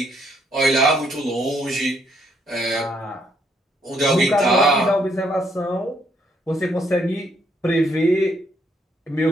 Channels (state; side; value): normal; both; correlation 0.72